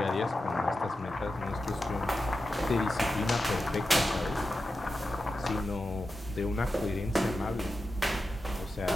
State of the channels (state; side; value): normal; both; correlation 0.91